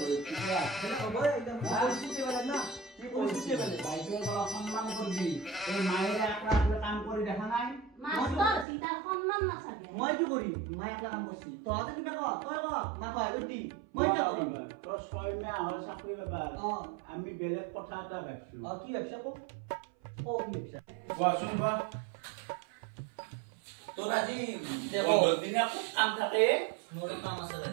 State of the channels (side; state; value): left; drops out; at 8.7 s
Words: হইছে সেটা হবে একদম পরিস্থিতি বেলেগ না কি পরিস্থিতি বেলেগ বাইরে বলা সম্মান করবি এই মায়ের একলা কাম করে দেখা নাই মাস্টার সীতার সম্মান না থাকে মই কি করি মাই একলা কাম করছি তো আতে কিনা কো তই কো মা কয় দি মই কি করি তো ছয় মাহ হয় চাকরি ব্যাপার আমি বেলেগ কথা এটা ভাবছো কি ব্যবসা কো ও কি ব্যবসা কোৱাচোন বা তোৰ আজি দেখো দিনে খুব কাম থাকে মোৰ কাম আছে